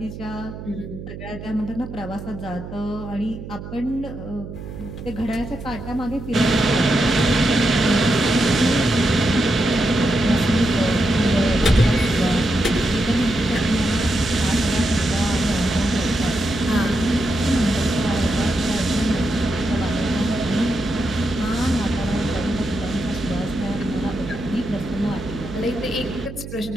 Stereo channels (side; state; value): right; noise; hum, 11 dB below the sound